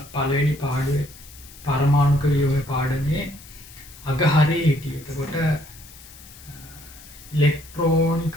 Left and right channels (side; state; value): left; noise; hiss, 20 dB below the sound